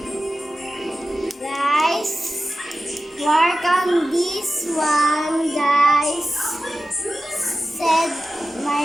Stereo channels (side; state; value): both; normal; correlation 0.94